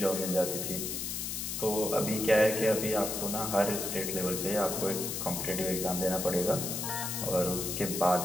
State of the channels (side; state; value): left; noise; hiss, 3 dB below the sound